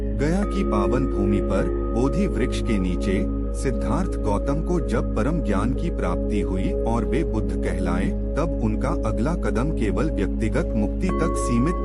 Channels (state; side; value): identical; both; correlation 1.00